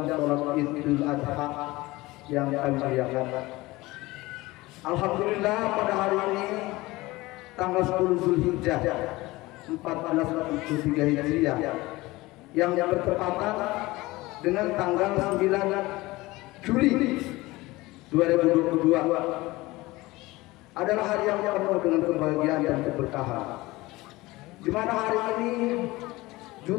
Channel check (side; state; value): right; quieter; 20.3 dB